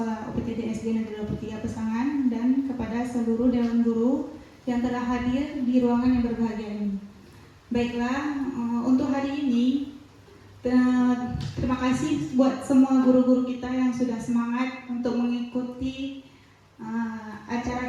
UPTD SD Negeri 23 Pesangan dan kepada seluruh dewan guru yang telah hadir di ruangan yang berbahagia ini. Baiklah, untuk hari ini terima kasih buat semua guru-guru kita yang sudah semangat untuk mengikuti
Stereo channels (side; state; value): both; identical; correlation 1.00